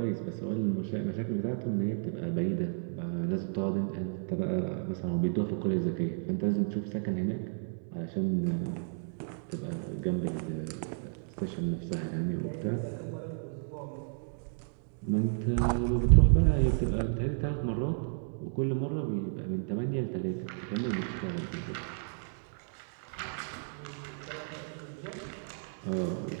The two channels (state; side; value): silent; left; digital silence